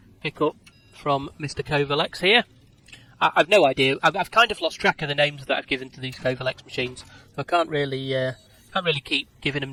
pickup from Mr. Covalex here. I've no idea. I've kind of lost track of the names that I've given to these Covalex machines. So I can't really keep giving them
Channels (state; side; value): identical; both; correlation 1.00